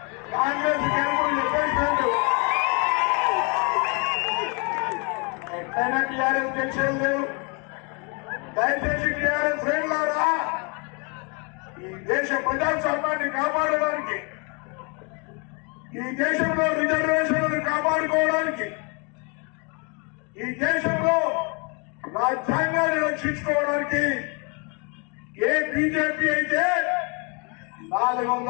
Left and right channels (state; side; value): quieter; right; 33.3 dB